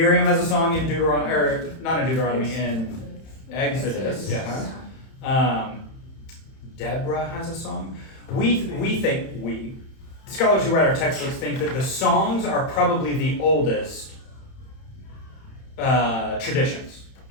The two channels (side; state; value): right; late; 31 ms